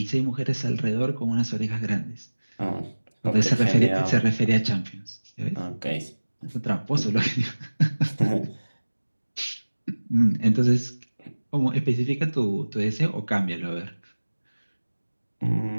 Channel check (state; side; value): inverted; both; correlation -1.00